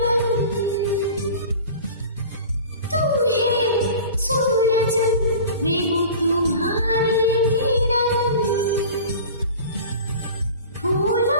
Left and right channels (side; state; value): both; inverted; correlation -0.38